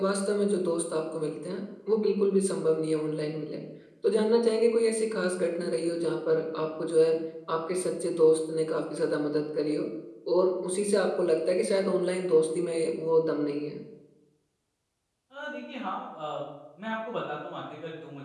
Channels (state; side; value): identical; both; correlation 1.00